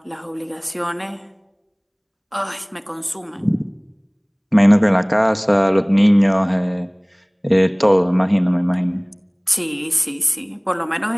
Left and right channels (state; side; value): identical; both; correlation 1.00